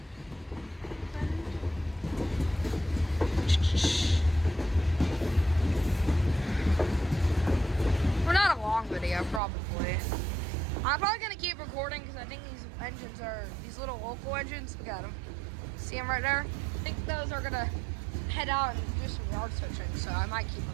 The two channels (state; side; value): drops out; left; at 9.4 s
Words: We're not a long video, probably. I'm probably gonna keep recording because I think these engines are these little local engines. Look at them. See them right there? I think those are gonna head out and do some yard switching, so I might keep